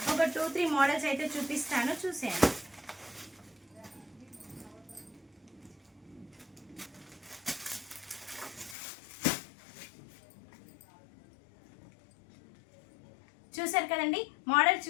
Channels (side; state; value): right; drops out; at 8.8 s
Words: ఒక 2-3 మోడల్స్ అయితే చూపిస్తాను, చూసేయండి. చూసారు కదండి, మోడల్స్